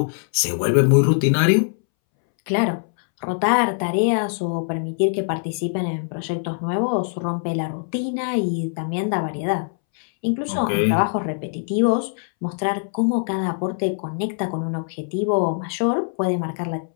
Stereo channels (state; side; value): silent; right; 63 dB below the other